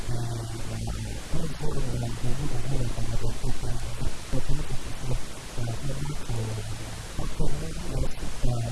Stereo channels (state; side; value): identical; both; correlation 1.00